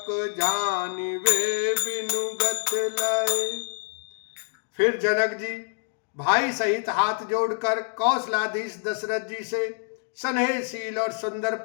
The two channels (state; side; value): silent; right; digital silence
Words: जानिवे बिनुगत लय। फिर जनक जी भाई सहित हाथ जोड़कर कौशलाधीश दशरथ जी से स्नेहशील और सुंदर